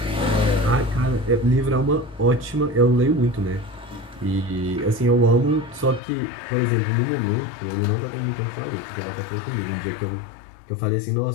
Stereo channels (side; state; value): right; drops out; at 6.0 s